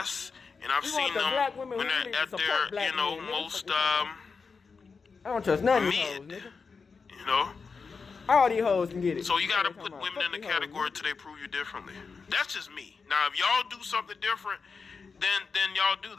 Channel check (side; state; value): right; quieter; 5.0 dB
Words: and I've seen them when they're at their, you know, most I don't trust none of these hoes, mid. nigga. You know. All these hoes can get it. So you gotta put women in the category till they prove you differently. That's just me. Now, if y'all do something different, then y'all do